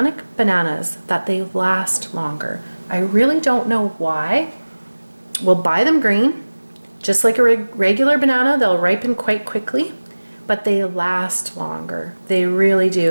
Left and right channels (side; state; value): both; inverted; correlation -1.00